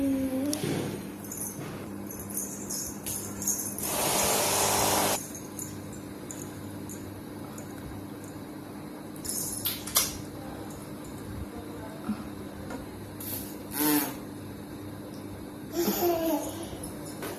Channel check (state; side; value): identical; both; correlation 1.00